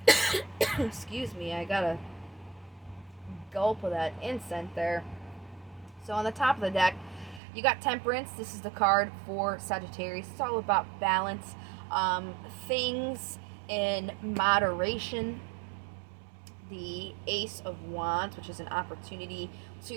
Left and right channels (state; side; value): drops out; left; at 7.4 s